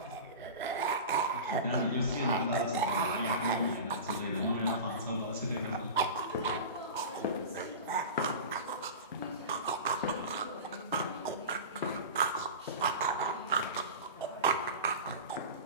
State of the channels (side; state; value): both; inverted; correlation -0.30